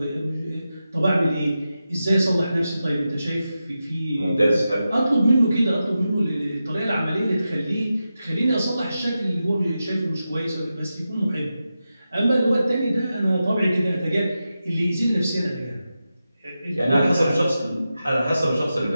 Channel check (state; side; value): inverted; both; correlation -0.91